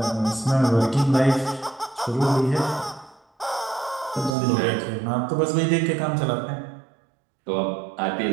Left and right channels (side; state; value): left; drops out; at 4.4 s